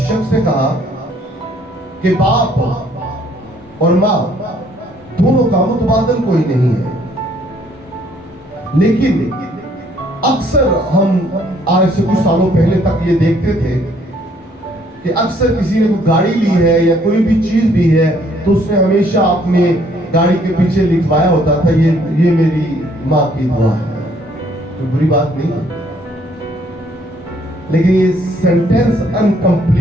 نے کہا کہ باپ اور ماں دونوں کا متبادل کوئی نہیں ہے، لیکن اکثر ہم آج سے کچھ سالوں پہلے تک یہ دیکھتے تھے کہ اکثر کسی نے کوئی گاڑی لی ہے یا کوئی بھی چیز بھی ہے تو اس نے ہمیشہ اپنے گاڑی کے پیچھے لکھوایا ہوتا تھا یہ میری ماں کی دعا ہے. کوئی بری بات نہیں ہے، لیکن یہ سینٹینس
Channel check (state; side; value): normal; both; correlation 0.64